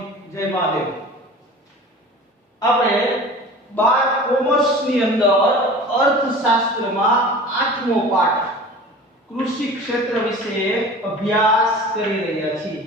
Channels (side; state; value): both; normal; correlation 0.39